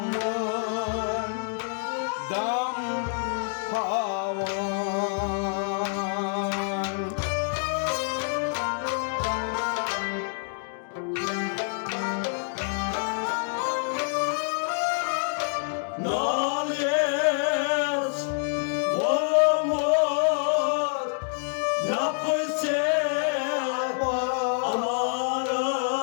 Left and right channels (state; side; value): silent; right; 60 dB below the other